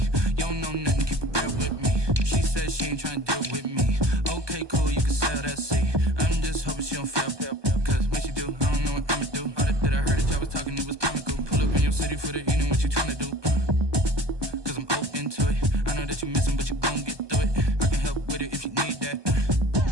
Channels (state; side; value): late; left; 1.2 ms